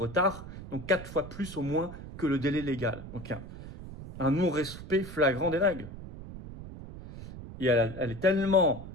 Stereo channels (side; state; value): right; noise; rumble, 12 dB below the sound